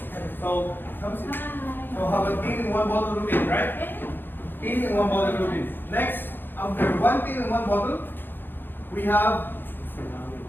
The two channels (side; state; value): right; late; 0.097 ms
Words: So, so have a teen in one bottle routine, right? Teen in one bottle routine. Next, after one teen in one bottle, we have